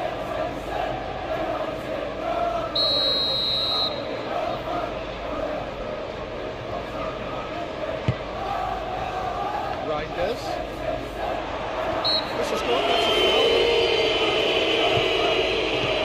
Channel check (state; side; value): identical; both; correlation 1.00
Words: Reinders. This is good, that's a foul.